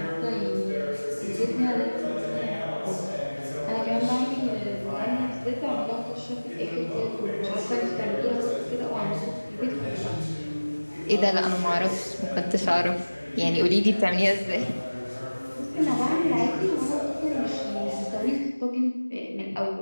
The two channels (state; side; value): inverted; both; correlation -1.00